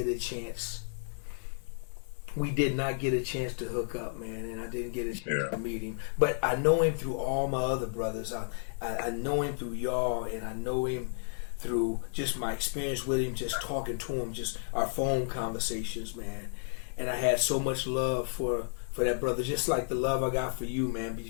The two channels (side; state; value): right; silent; 56 dB below the other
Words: a chance. We did not get a chance to hook up, man, and I didn't get a chance to meet him. But I know him through all my other brothers. I know him through y'all, and I know him through just my experience with him, just talking to him, just our phone conversations, man. And I had so much love for that brother, just like the love I got for you, man.